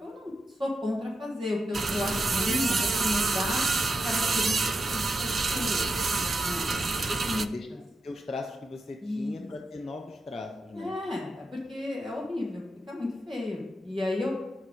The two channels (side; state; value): both; normal; correlation 0.88